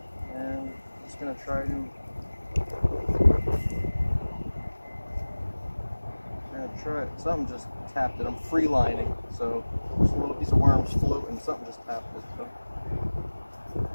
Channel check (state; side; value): inverted; both; correlation -1.00